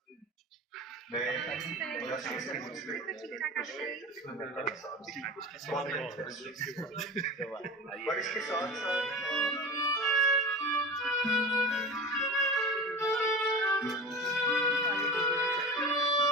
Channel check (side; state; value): both; normal; correlation 0.31